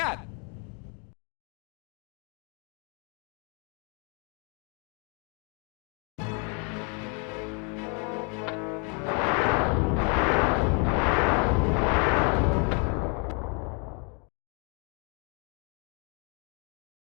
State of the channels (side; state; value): right; quieter; 36.9 dB